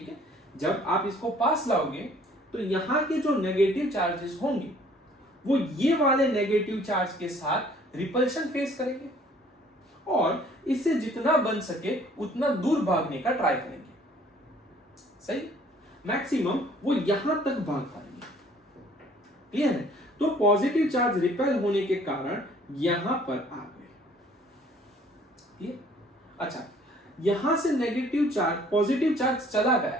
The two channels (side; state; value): both; normal; correlation 0.57